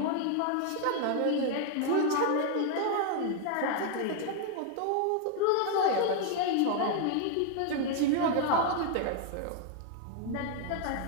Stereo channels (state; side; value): different; both; correlation 0.00